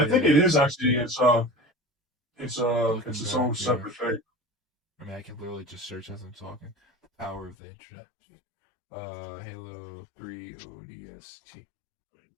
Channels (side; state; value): right; drops out; at 7.6 s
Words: think Yeah. it is actually. It's Looking its back, own yeah. separate thing. I mean, I can literally just search as I'm talking. The power of the internet. Halo 3 ODST.